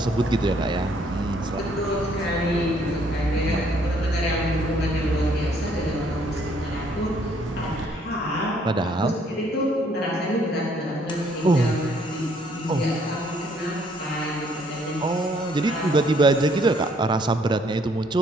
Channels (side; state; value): both; normal; correlation 0.65